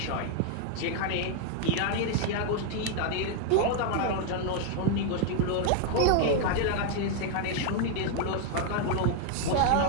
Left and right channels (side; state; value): both; different; correlation 0.00